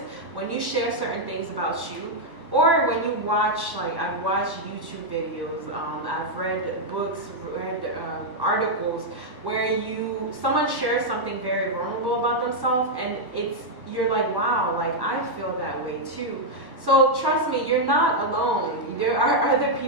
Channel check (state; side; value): late; left; 1.1 ms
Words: when you share certain things about you, or when you watch, like, I've watched YouTube videos, I've read books, read articles where someone shares something very vulnerable about themselves, and you're like, wow, like, I feel that way too. So trust me, you're not alone. There are other